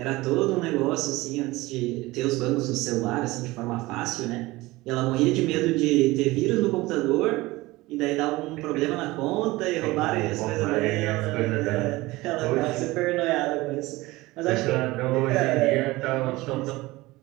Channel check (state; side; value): quieter; left; 20.1 dB